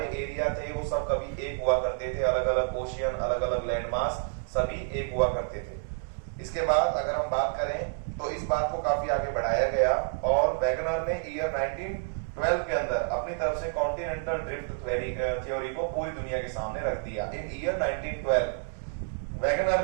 एरिया थे वो सब कभी एक हुआ करते थे, अलग अलग ओशियन, अलग अलग लैंड मास सभी एक हुआ करते थे। इसके बाद अगर हम बात करें तो इस बात को काफी आगे बढ़ाया गया और वैगनर ने ईयर 1912 के अंदर अपनी तरफ से कॉन्टिनेंटल ड्रिफ्ट थ्योरी को पूरी दुनिया के सामने रख दिया। इन ईयर 1912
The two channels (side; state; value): left; silent; digital silence